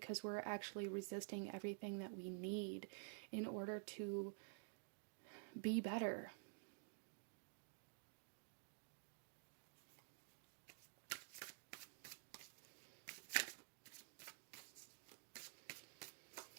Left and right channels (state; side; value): silent; left; digital silence